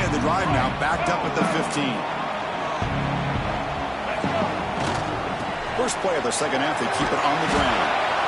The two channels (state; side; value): identical; both; correlation 1.00